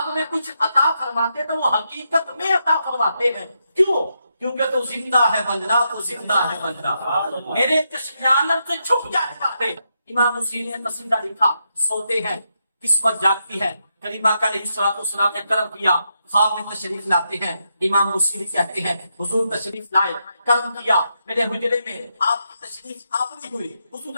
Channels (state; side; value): inverted; both; correlation -0.82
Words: میں کچھ عطا فرماتے تو وہ حقیقت میں عطا فرماتے ہیں. کیوں؟ کیونکہ تو زندہ ہے بندہ تو زندہ ہے بندہ میرے چشم عالم سے چھپ جانے والے. امام موسیلی نے قصیدہ لکھا. سوتے ہیں قسمت جاگتی ہے. کریم آقا علیہ السلام نے کرم کیا خواب میں تشریف لاتے ہیں. امام بصیری کہتے ہیں حضور تشریف لائے, کرم کیا, میرے حجرے میں آپ کی تشریف آوری ہوئی. حضور